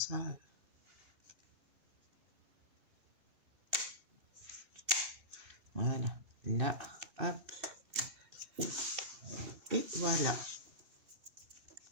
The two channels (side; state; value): left; late; 2.7 ms